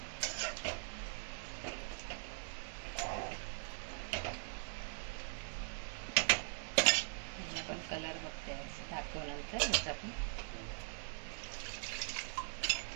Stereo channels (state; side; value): silent; left; digital silence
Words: पण कलर बघते दाखवल्यानंतर ह्याचा पण.